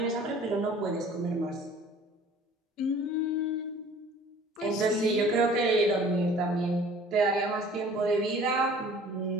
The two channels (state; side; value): normal; both; correlation 0.49